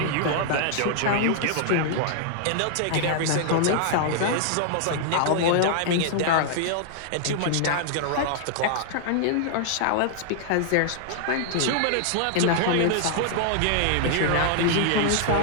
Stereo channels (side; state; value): both; different; correlation -0.01